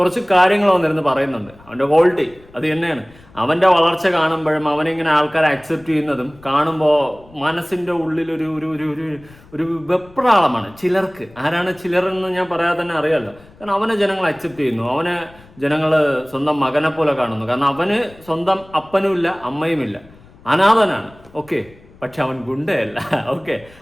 കാര്യങ്ങൾ വന്നിരുന്ന് പറയുന്നുണ്ട്. അവൻ്റെ ക്വാളിറ്റി അത് തന്നെയാണ്. അവൻ്റെ വളർച്ച കാണുമ്പോഴും അവനിങ്ങനെ ആൾക്കാരെ അക്സെപ്റ്റ് ചെയ്യുന്നതും കാണുമ്പോൾ മനസ്സിൻ്റെ ഉള്ളിൽ ഒരു ഒരു ഒരു ഒരു ഒരു വെപ്രാളമാണ് ചിലർക്ക്. ആരാണ് ചിലരെന്ന് ഞാൻ പറയാതെ തന്നെ അറിയാമല്ലോ. കാരണം അവനെ ജനങ്ങൾ അക്സെപ്റ്റ് ചെയ്യുന്നു, അവനെ ജനങ്ങൾ സ്വന്തം മകനെ പോലെ കാണുന്നു. കാരണം അവന് സ്വന്തം അപ്പനുമില്ല അമ്മയുമില്ല, അനാഥനാണ്. ഓക്കെ, പക്ഷെ അവൻ ഗുണ്ടയല്ല. ഓക്കെ,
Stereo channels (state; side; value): noise; left; rumble, 25 dB below the sound